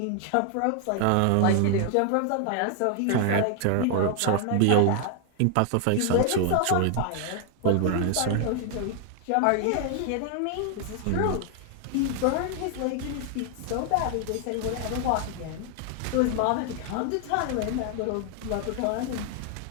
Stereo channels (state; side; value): different; both; correlation 0.00